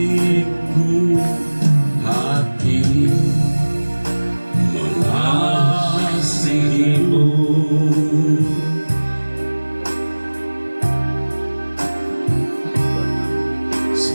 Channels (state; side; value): inverted; both; correlation -1.00